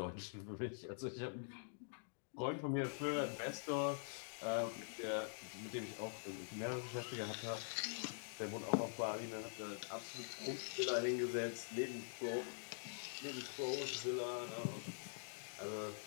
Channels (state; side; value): silent; right; digital silence